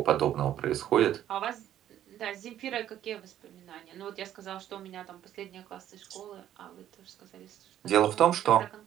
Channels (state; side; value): quieter; left; 11.5 dB